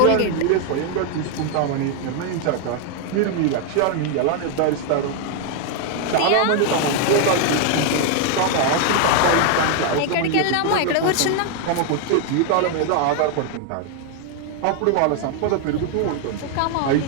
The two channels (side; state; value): both; different; correlation 0.00